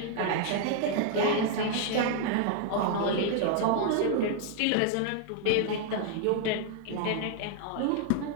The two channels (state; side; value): different; both; correlation 0.00